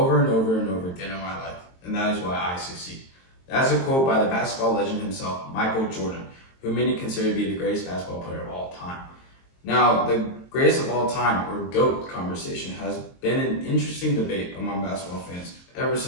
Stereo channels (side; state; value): right; late; 22 ms